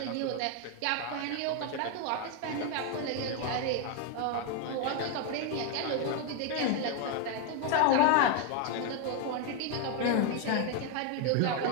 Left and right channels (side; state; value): both; different; correlation 0.01